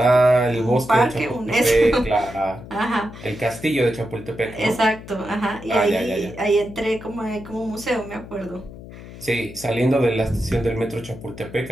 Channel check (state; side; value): noise; left; hum, 15 dB below the sound